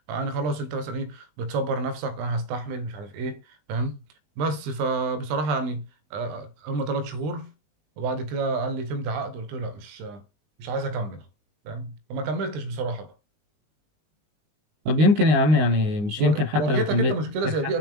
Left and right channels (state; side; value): late; left; 19 ms